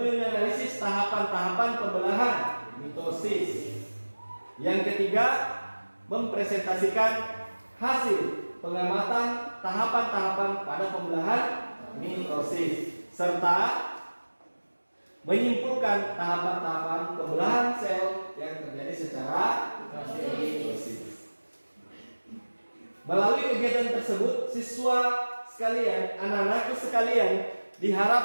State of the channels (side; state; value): both; inverted; correlation -1.00